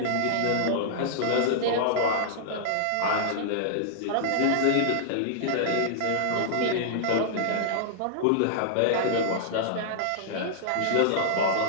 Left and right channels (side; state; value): both; different; correlation -0.01